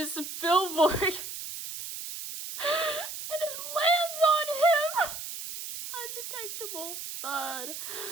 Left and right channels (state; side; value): noise; right; hiss, 8 dB below the sound